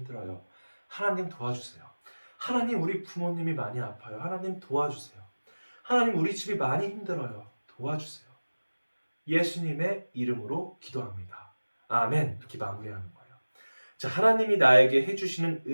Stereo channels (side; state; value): both; inverted; correlation -1.00